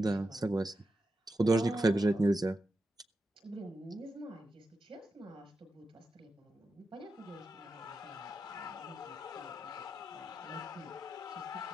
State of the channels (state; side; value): normal; both; correlation 0.88